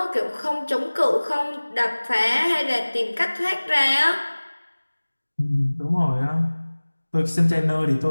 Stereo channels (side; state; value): both; inverted; correlation -1.00